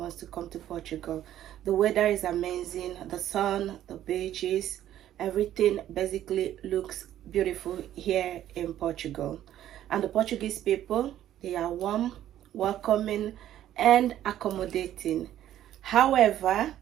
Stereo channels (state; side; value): quieter; left; 12.0 dB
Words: to come to Portugal. The weather is amazing, the sun, the beaches, everything basically looks beautiful here in Portugal. And the Portuguese people, they are warm, welcoming, and accommodating. However,